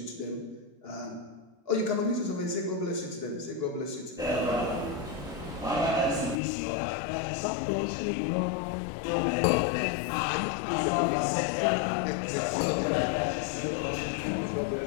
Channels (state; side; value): drops out; right; at 6.4 s